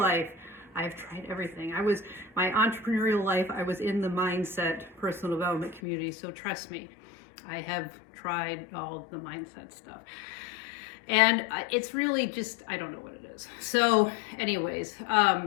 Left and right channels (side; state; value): right; drops out; at 5.8 s